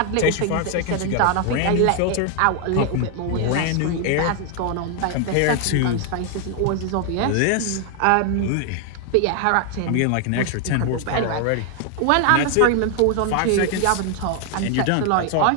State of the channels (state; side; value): different; both; correlation 0.00